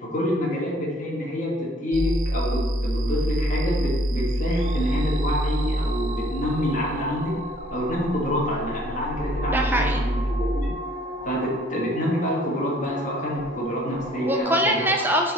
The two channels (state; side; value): normal; both; correlation 0.58